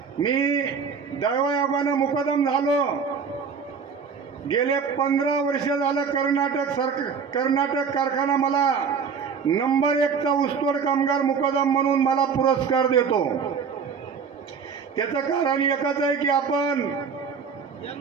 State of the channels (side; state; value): left; quieter; 6.1 dB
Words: मी दैवयोगानं मुकदम झालो. गेले 15 वर्ष झालं कर्नाटक कारखाना मला नंबर 1चा ऊसतोड कामगार मुकदम म्हणून मला पुरस्कार देतो. त्याचं कारण एकच आहे की आपण